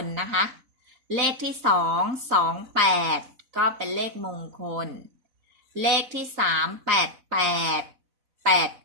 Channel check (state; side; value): late; left; 4.1 ms